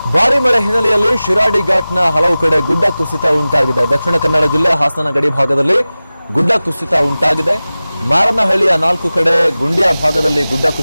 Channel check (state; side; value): inverted; both; correlation -0.97